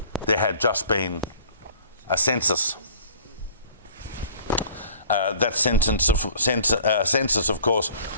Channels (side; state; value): both; inverted; correlation -0.51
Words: there had just been a census. That census, of course,